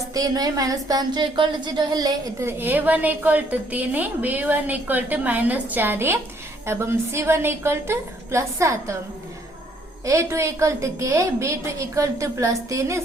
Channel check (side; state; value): both; normal; correlation 0.66